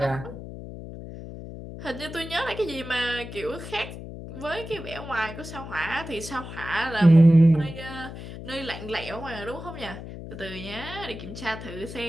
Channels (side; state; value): left; noise; hum, 11 dB below the sound